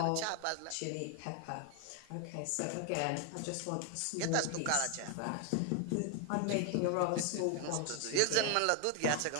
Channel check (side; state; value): both; different; correlation 0.00